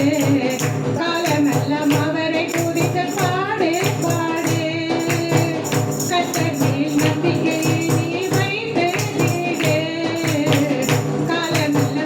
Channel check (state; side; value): identical; both; correlation 1.00